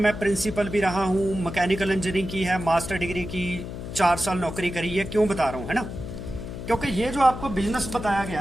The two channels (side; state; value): left; noise; hum, 8 dB below the sound